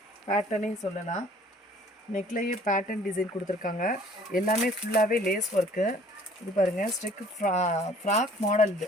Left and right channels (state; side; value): normal; both; correlation 0.54